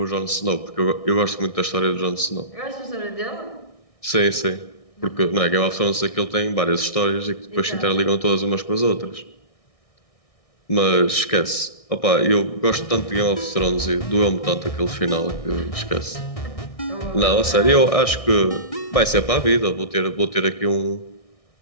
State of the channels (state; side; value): late; right; 1.6 ms